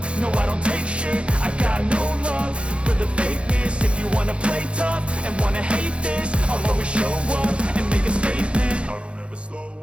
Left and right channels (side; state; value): left; late; 0.059 ms